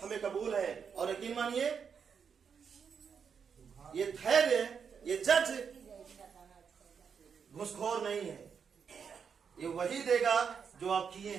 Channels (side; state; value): left; quieter; 6.6 dB